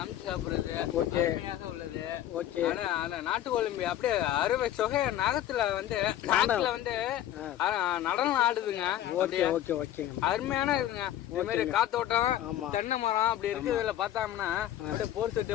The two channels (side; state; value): right; quieter; 12.3 dB